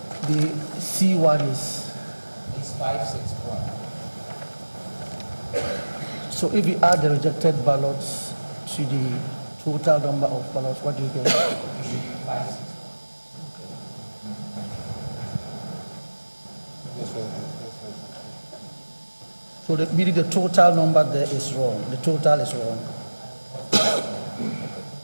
the C1 is 561. So if we add the rejected ballots to the total number of ballots, what do you get? 561. So meaning the total number there is wrong. The total is wrong.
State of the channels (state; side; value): inverted; both; correlation -1.00